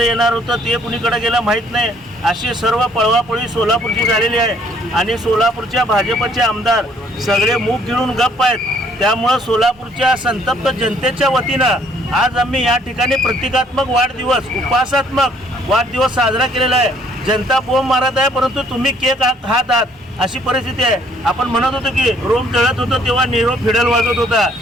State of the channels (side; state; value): both; normal; correlation 0.63